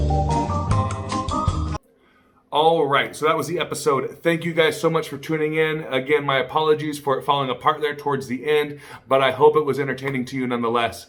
All right, so that was the episode. Thank you guys so much for tuning in. Again, my apologies for it falling apart there towards the end, but I hope it was entertaining to you nonetheless.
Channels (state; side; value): identical; both; correlation 1.00